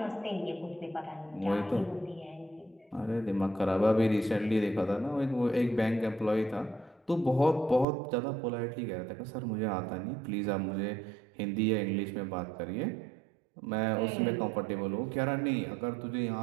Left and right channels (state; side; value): drops out; left; at 7.9 s